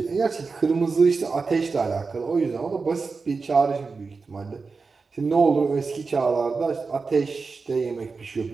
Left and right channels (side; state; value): left; quieter; 4.5 dB